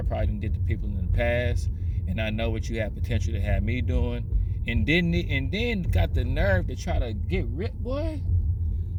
probably did to people in the past, and I know what you have potential to have me doing. And then got the nerve to try to get rid, boy.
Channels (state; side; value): identical; both; correlation 1.00